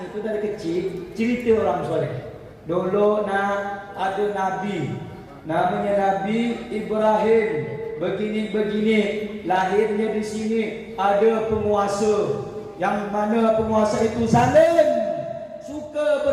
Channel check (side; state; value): both; identical; correlation 1.00